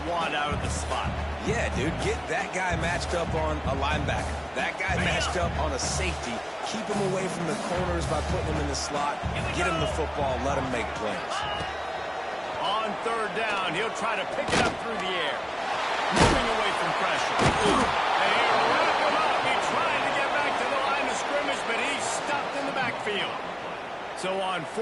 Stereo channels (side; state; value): both; identical; correlation 1.00